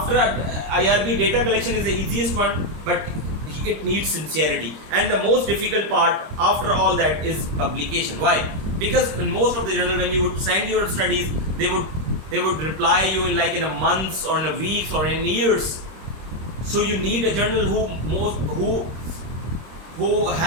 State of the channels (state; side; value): late; left; 26 ms